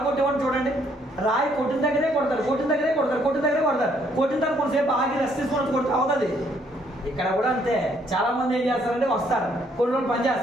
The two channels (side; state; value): both; normal; correlation 0.68